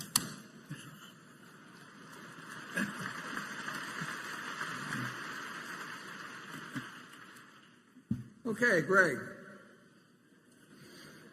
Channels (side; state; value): both; identical; correlation 1.00